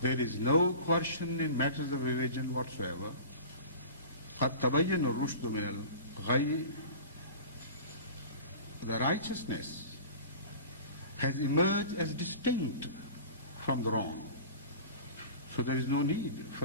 is no coercion in matters of religion whatsoever. قَدْ تَبَيَّنَ الرُّشْدُ مِنَ الْغَيِّ, the righteousness has emerged as distinct from the wrong. So there is no need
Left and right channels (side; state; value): both; inverted; correlation -0.37